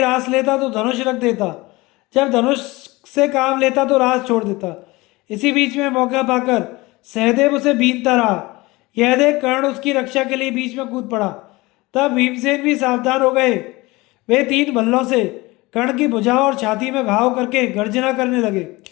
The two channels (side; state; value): right; quieter; 22.0 dB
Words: रास लेता तो धनुष रख देता, जब धनुष से काम लेता तो रास छोड़ देता। इसी बीच में मौका पाकर सहदेव उसे बीनता रहा। यह देख कर्ण उसकी रक्षा के लिए बीच में कूद पड़ा। तब भीमसेन भी सावधान हो गए। वे 3 भल्लों से कर्ण की भुजाओं और छाती में घाव करके गर्जना करने लगे।